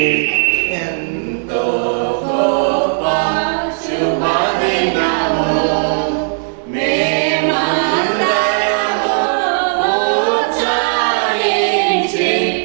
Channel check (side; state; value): left; silent; digital silence